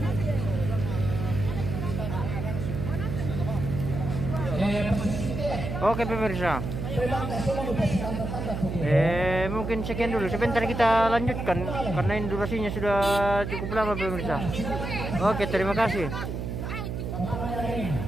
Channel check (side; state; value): right; noise; hum, 4 dB below the sound